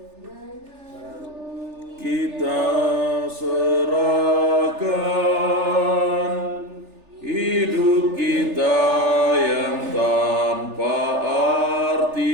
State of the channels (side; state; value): left; late; 3.4 ms